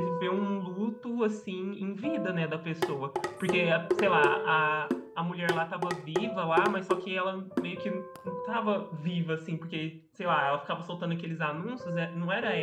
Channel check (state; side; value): identical; both; correlation 1.00